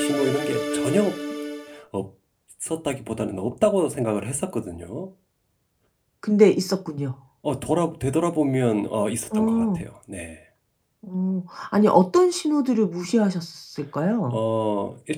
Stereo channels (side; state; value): both; identical; correlation 1.00